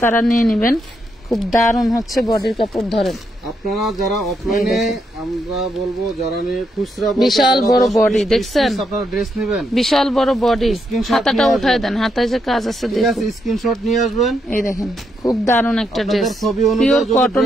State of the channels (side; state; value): both; normal; correlation 0.79